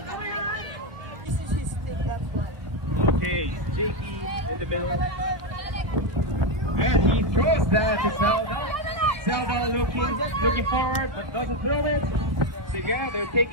Okay, JP in the middle. And he throws that to Selva. Selva looking forward, but doesn't throw it. So yeah, they're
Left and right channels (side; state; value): left; late; 1.5 ms